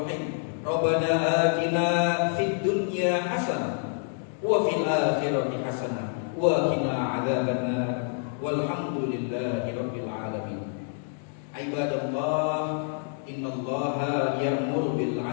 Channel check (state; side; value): silent; right; 59 dB below the other